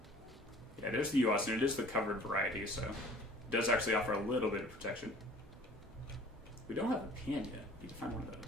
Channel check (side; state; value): both; normal; correlation 0.49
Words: Yeah, it is the US, and it is the covered variety, so it does actually offer a little bit of protection. We don't have a pan yet. We need to find one of